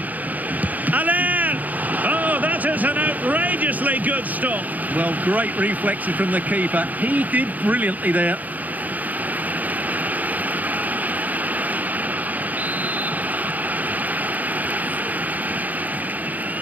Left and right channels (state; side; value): late; left; 0.080 ms